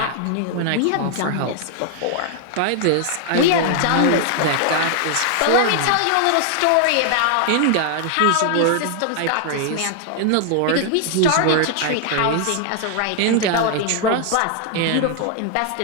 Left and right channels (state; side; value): different; both; correlation 0.00